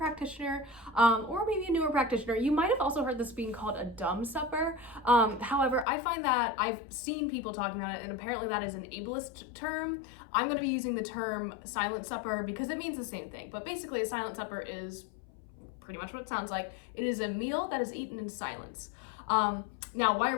or maybe a newer practitioner, you might have also heard this being called a dumb supper. However, I find that I've seen people talking about it, and apparently that is an ableist term. I'm going to be using the term silent supper because it means the same thing. But basically a silent supper is pretty much what it sounds like. It is a meal that is eaten in silence. Now, why are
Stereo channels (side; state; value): right; drops out; at 5.9 s